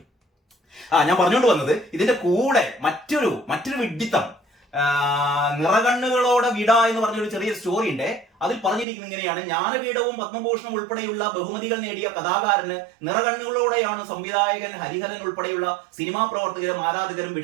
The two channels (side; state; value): left; drops out; at 8.8 s